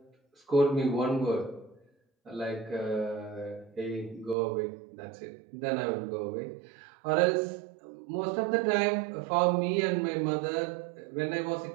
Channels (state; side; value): drops out; left; at 4.4 s